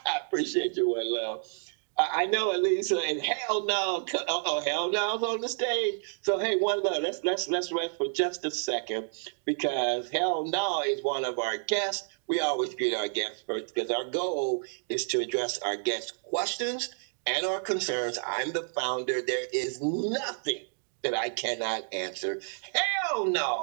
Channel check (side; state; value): left; silent; digital silence